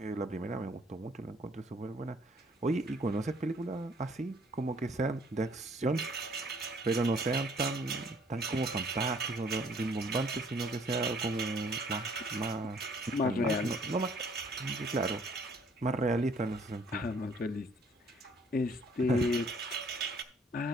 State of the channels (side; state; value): both; normal; correlation 0.60